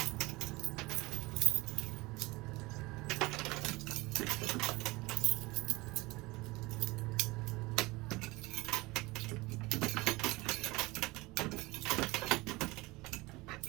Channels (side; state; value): left; quieter; 22.3 dB